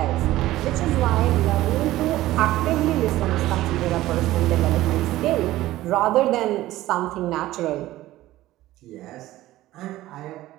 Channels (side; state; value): left; quieter; 15.9 dB